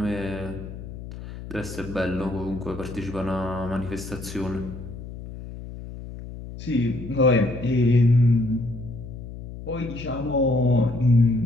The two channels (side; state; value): left; noise; hum, 11 dB below the sound